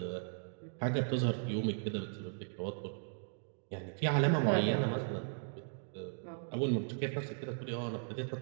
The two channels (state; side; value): silent; left; digital silence